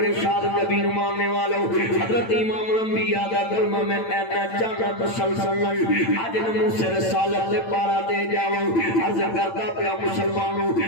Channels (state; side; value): late; right; 8.9 ms